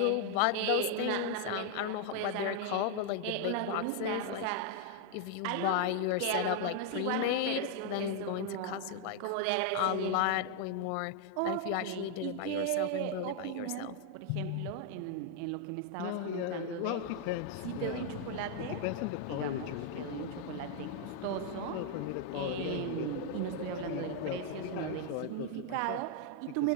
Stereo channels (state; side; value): different; both; correlation 0.00